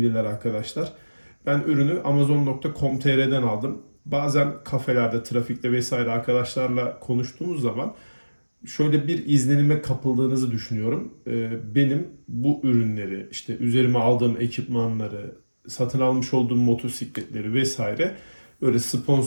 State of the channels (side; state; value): both; inverted; correlation -1.00